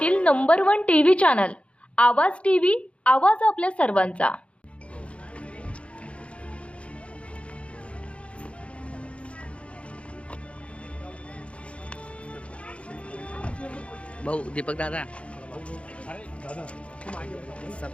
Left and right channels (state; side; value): late; right; 0.061 ms